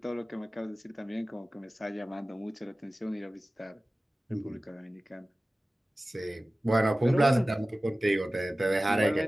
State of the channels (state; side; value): normal; both; correlation 0.97